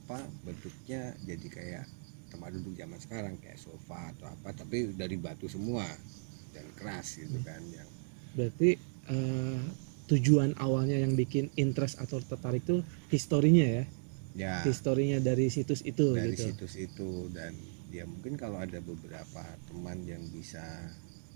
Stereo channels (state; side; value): silent; left; digital silence